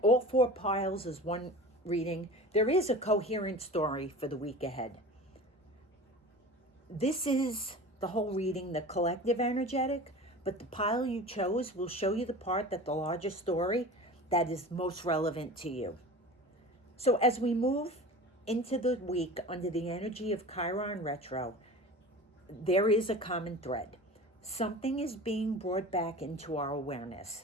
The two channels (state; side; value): normal; both; correlation 0.35